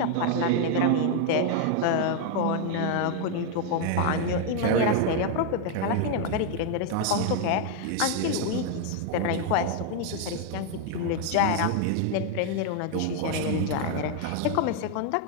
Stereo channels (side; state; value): both; different; correlation 0.00